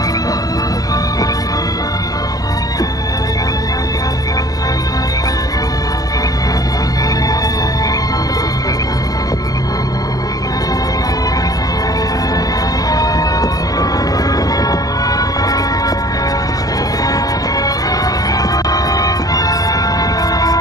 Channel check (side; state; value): right; late; 0.18 ms